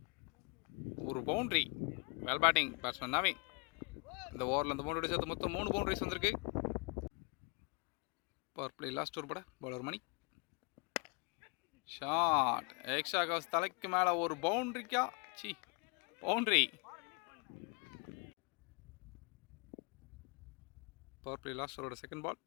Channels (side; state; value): right; quieter; 33.1 dB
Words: ஒரு boundary. Well batting batsman Naveen. இந்த ஓவரில் அந்த பவுண்டரி சேர்த்து மொத்தம் 3 பவுண்டரிஸ் வந்திருக்கு. பவர் பிளே லாஸ்ட் ஓவர் போட bowler Mani. Shot. Extra covers தலைக்கு மேலே ஒரு பவுண்டரிக்கா? பவுண்டரி. பவர் பிளே லாஸ்ட் ஓவரோட second ball.